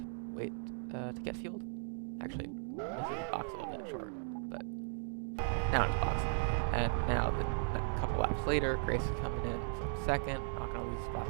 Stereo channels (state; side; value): silent; left; digital silence